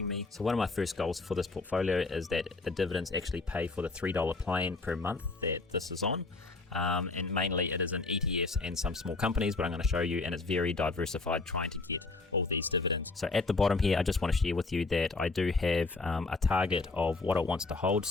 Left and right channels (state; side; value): quieter; right; 3.6 dB